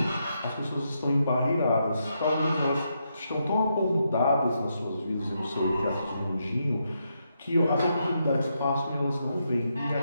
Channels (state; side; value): inverted; both; correlation -0.81